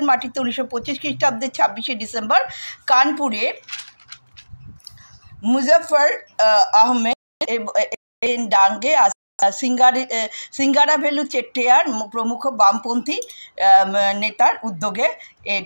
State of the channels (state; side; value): inverted; both; correlation -1.00